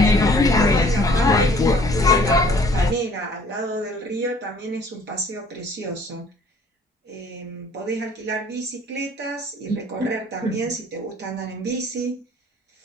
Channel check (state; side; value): normal; both; correlation 0.56